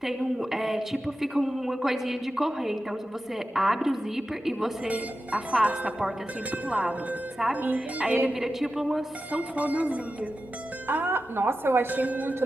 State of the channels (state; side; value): normal; both; correlation 0.92